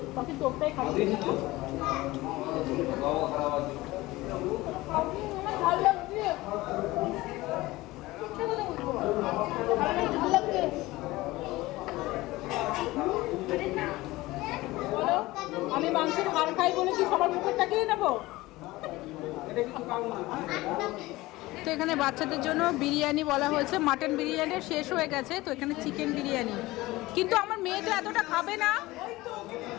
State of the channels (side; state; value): right; quieter; 19.3 dB